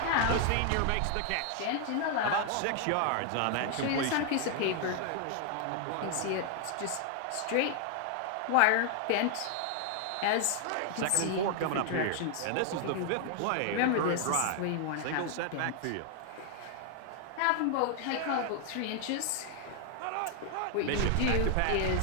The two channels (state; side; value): different; both; correlation 0.00